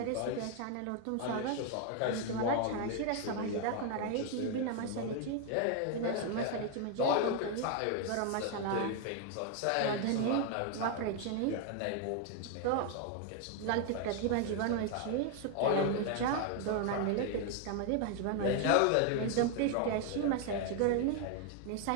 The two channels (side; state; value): both; different; correlation 0.01